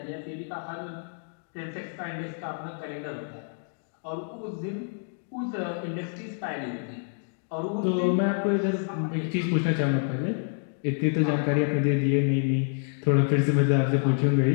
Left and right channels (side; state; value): right; silent; digital silence